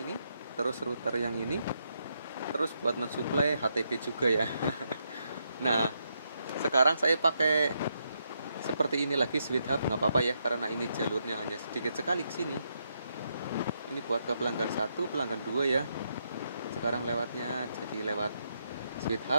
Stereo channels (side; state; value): both; inverted; correlation -0.79